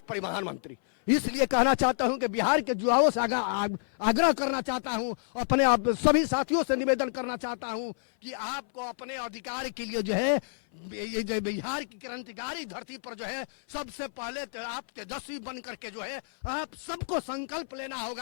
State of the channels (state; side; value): silent; right; 57 dB below the other